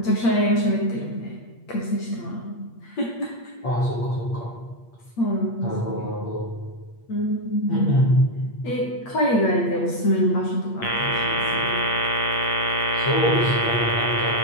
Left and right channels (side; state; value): right; late; 8.5 ms